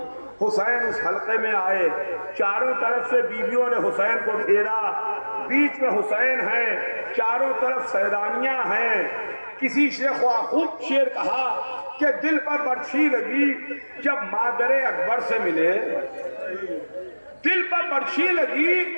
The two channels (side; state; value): both; inverted; correlation -1.00